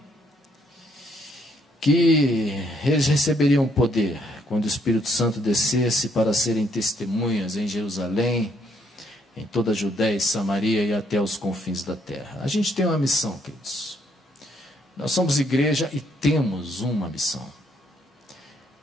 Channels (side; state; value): both; normal; correlation 0.70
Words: que eles receberiam poder quando o Espírito Santo descesse para serem testemunhas em Jerusalém, em toda a Judéia e Samaria e até os confins da terra. A gente tem uma missão, queridos. Nós somos igreja e temos uma missão.